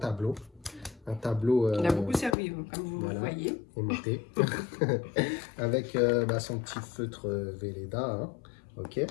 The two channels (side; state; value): right; drops out; at 2.4 s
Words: Un tableau. Il a beaucoup servi, comme vous voilà, voyez. Aimanté. Avec son petit feutre Velleda. Hein. Ok.